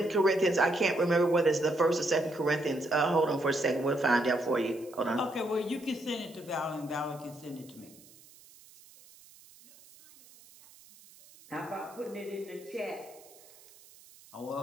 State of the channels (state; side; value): noise; right; hiss, 24 dB below the sound